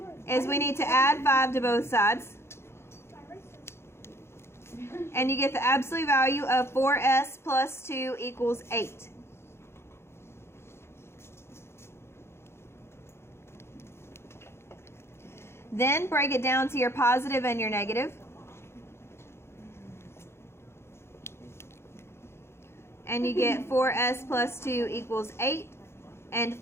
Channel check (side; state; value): right; late; 0.12 ms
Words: is we need to add 5 to both sides. And you get the absolute value of 4s plus 2 equals 8. Then break it down to your positive and your negative. And you get 4s plus 2 equals 8. And